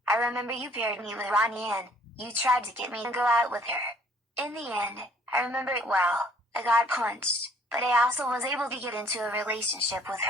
I remember you paired me with Ronnie Ann. You tried to get me to go out with her. In the end, I remember it well. I got punched, but I also was able to get into a relationship with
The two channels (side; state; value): both; normal; correlation 0.59